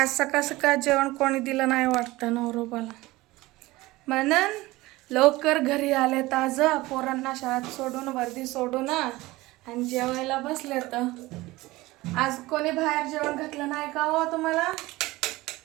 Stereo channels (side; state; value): left; quieter; 19.6 dB